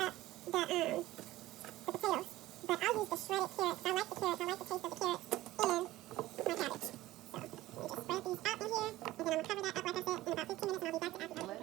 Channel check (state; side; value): quieter; left; 16.5 dB